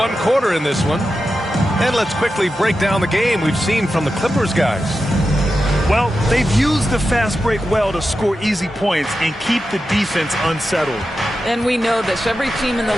quarter in this one. And let's quickly break down the game we've seen from the Clippers guys. Well, they've used the fast break well to score easy points and keep the defense unsettled. And we know this. Every team in the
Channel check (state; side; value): normal; both; correlation 0.91